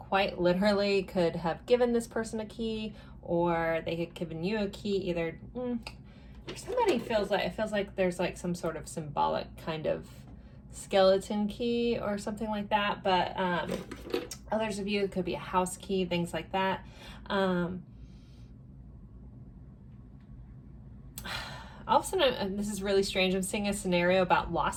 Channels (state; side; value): identical; both; correlation 1.00